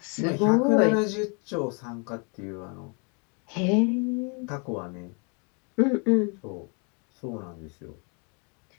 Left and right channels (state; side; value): quieter; right; 35.9 dB